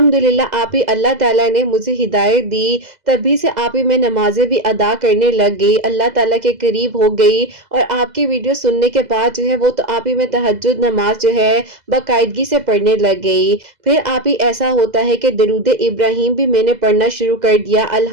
آپ ہی اللہ تعالیٰ نے مجھے ہدایت دی، تبھی سے آپ ہی میں نمازیں بھی ادا کرنے لگ گئی، اللہ تعالیٰ کے قریب ہو گئی، اور آپ کی ویڈیو سننے کے بعد جو ہے وہ تو آپ ہی میں تہجد نماز جو ہے باقاعدگی سے پڑھنے لگ گئی۔ پھر آپ ہی ایسا ہوتا ہے کہ درود ابراہیم بھی میں نے پڑھنا شروع کر دیا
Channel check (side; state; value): left; late; 2.0 ms